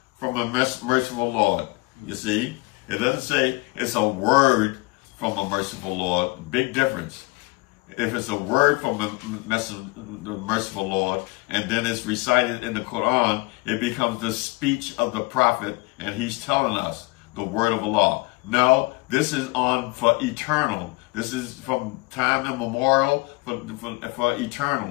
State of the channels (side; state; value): right; quieter; 25.1 dB